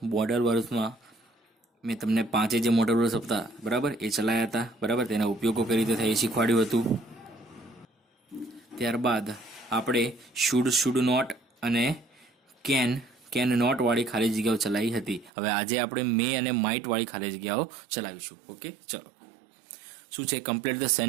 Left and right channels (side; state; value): left; drops out; at 15.3 s